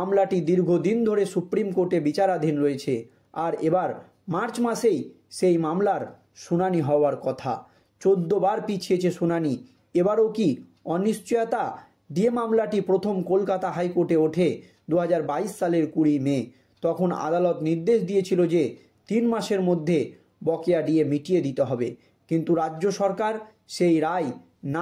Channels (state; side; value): identical; both; correlation 1.00